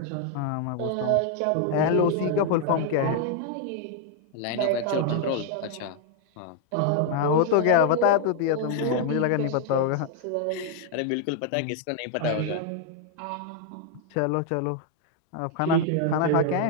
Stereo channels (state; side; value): different; both; correlation 0.00